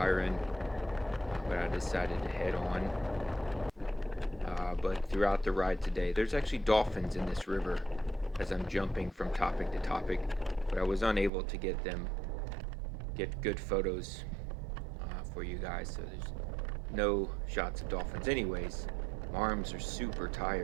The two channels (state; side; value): drops out; left; at 11.3 s